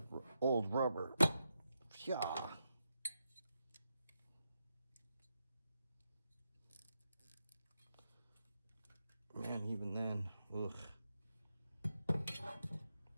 rubber. Yeah. Man, even then, ugh.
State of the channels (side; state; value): both; inverted; correlation -0.84